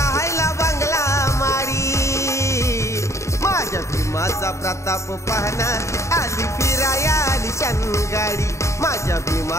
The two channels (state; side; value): late; right; 0.14 ms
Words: बंगला माडी माझ्या भीमाचा प्रताप पाहना आली फिराया आलिशान गाडी माझ्या